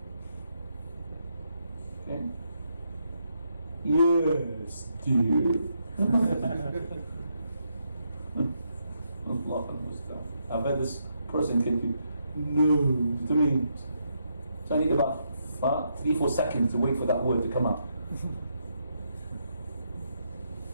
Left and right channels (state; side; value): inverted; both; correlation -0.79